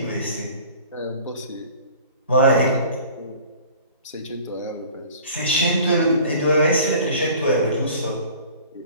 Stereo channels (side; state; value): both; inverted; correlation -0.47